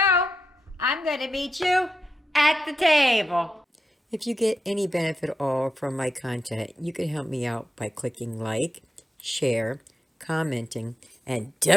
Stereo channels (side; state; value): both; normal; correlation 0.88